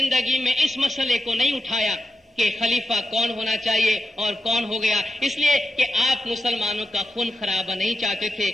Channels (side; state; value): both; normal; correlation 0.88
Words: میں اس مسئلے کو نہیں اٹھایا کہ خلیفہ کون ہونا چاہیے اور کون ہو گیا، اس لیے کہ آپ مسلمانوں کا خون خرابہ نہیں چاہتے تھے،